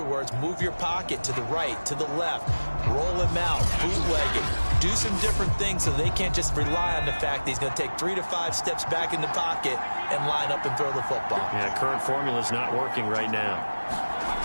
words, move your pocket to the right, to the left, roll him out, bootleg it. Do some different things so they can't just rely on the fact that he's going to take 3 to 5 steps back in the pocket and line up and throw the football. Yeah, current formula's not working right now.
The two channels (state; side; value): inverted; both; correlation -1.00